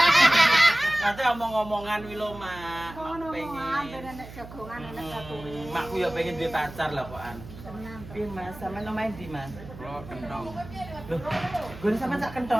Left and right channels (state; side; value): noise; right; hum, 15 dB below the sound